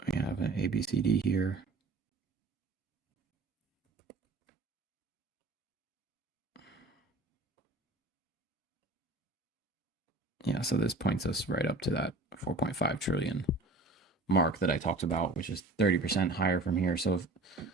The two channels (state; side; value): quieter; left; 3.0 dB